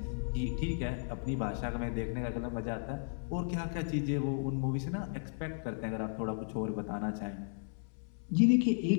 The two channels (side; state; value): right; silent; 55 dB below the other